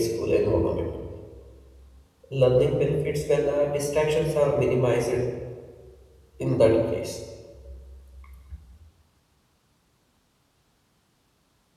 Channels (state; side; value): identical; both; correlation 1.00